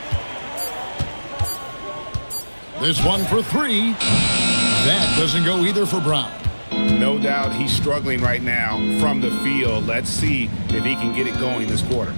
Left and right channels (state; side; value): inverted; both; correlation -1.00